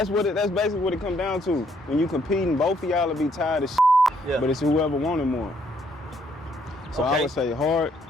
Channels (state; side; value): normal; both; correlation 0.69